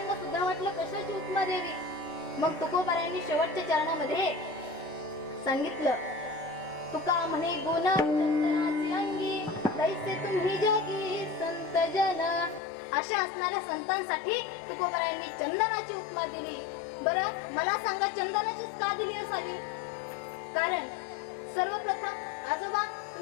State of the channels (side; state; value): right; drops out; at 12.6 s